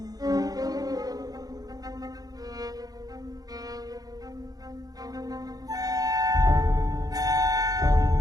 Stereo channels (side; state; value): left; late; 0.18 ms